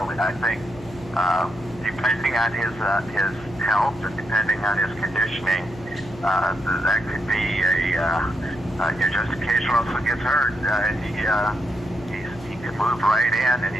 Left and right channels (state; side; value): noise; left; hum, 17 dB below the sound